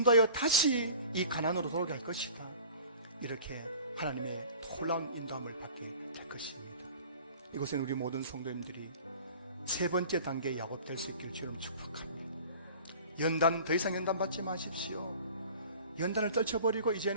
다시 이 가나안으로 돌아오게 할 것이다. 이렇게 하나님의 놀라운 인도함을 받게 될 것입니다. 이곳에는 우리 모든 성도님들이 세 번째 단계 야곱 될 수 있기를 주님 축복합니다. 연단, 더 이상 연단 받지 마십시오. 연단을 떨쳐버리고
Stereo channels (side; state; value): both; inverted; correlation -0.44